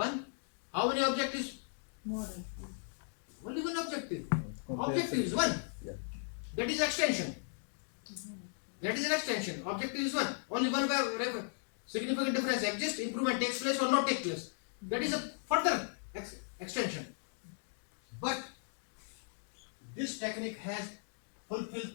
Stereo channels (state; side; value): silent; right; digital silence